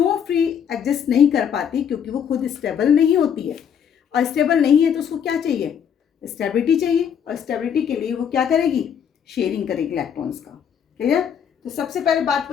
फ्री एग्जिस्ट नहीं कर पाती, क्योंकि वो खुद स्टेबल नहीं होती है, और स्टेबल नहीं है तो उसको क्या चाहिए, स्टेबिलिटी चाहिए, और स्टेबिलिटी के लिए वो क्या करेगी, शेयरिंग करेगी इलेक्ट्रॉन्स का। क्लियर। तो सबसे पहले बात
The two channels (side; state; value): right; quieter; 8.1 dB